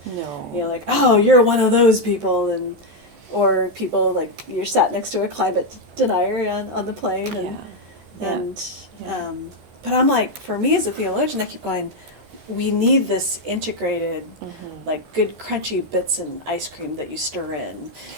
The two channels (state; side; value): late; left; 14 ms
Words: No. Like, oh, you're one of those people, or people like you're sat next to a climate denier on the plane, but I'm like, for me as a theologian, I keep going, we need this integrated like good crunchy bits in ice cream that you stir in.